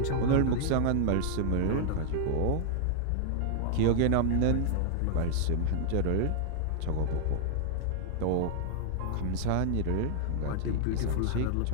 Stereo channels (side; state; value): both; different; correlation -0.01